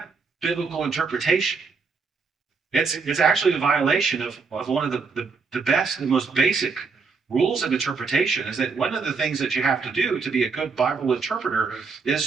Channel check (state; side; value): quieter; left; 4.9 dB